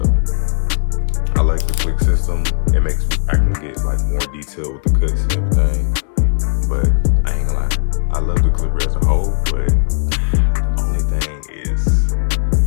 I like the click system. It makes I can get like more detail with the cuts and everything. But I ain't gonna lie, I love the clipper as a whole, but the only thing is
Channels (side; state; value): right; silent; digital silence